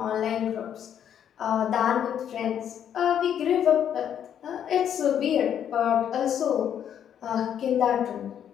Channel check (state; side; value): quieter; right; 9.3 dB